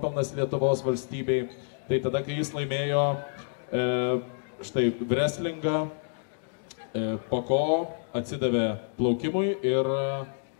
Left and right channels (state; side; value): silent; right; digital silence